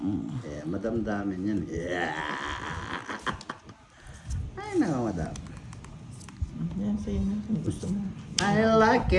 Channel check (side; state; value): both; identical; correlation 1.00